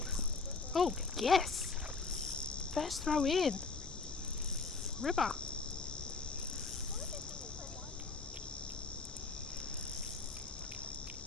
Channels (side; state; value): right; quieter; 4.3 dB